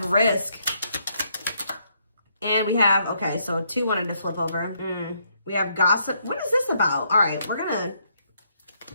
risk. And we have, okay, so 2 wanted to flip over. We have gossip. What is this about? All right, we're going to...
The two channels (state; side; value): inverted; both; correlation -0.73